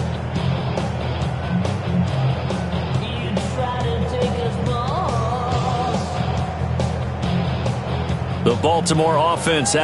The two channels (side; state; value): both; identical; correlation 1.00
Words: The Baltimore offense